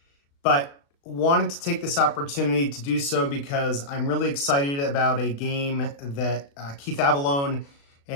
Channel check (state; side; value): late; right; 36 ms